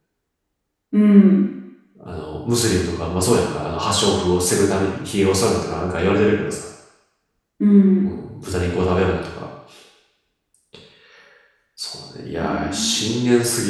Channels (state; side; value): identical; both; correlation 1.00